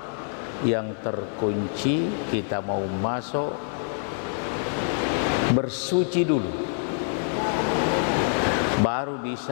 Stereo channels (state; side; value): silent; right; digital silence